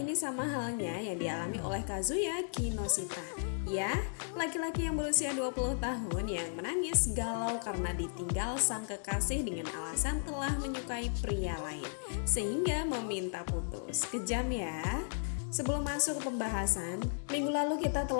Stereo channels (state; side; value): silent; right; digital silence